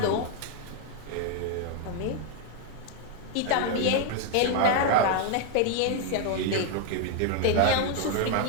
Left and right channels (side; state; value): both; different; correlation 0.00